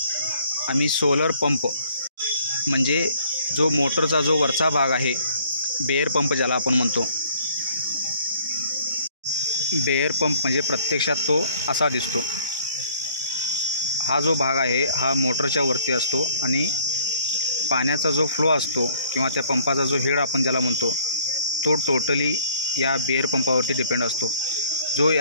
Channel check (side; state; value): both; inverted; correlation -0.60